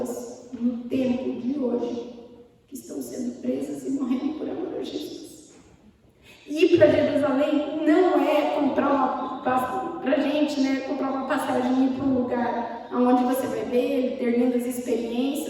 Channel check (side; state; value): both; identical; correlation 1.00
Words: no tempo de hoje que estão sendo presas e morrendo por amor a Jesus. Ir para Jerusalém não é comprar comprar uma passagem e ir para um lugar onde você vai ver, ter lindas